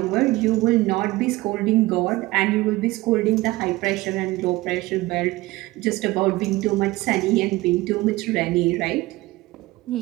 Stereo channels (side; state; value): left; quieter; 19.8 dB